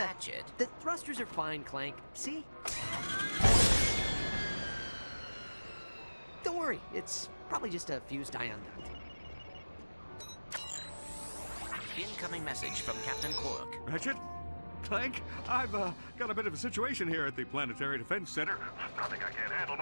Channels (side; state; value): both; inverted; correlation -1.00